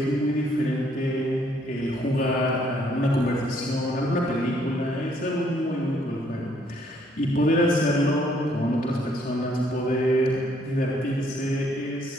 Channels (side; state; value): both; normal; correlation 0.67